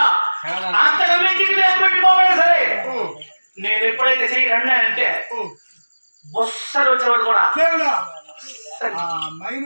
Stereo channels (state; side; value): inverted; both; correlation -1.00